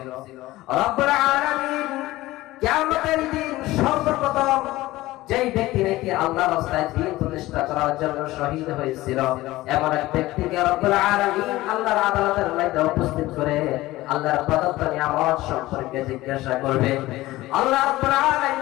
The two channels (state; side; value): quieter; right; 17.7 dB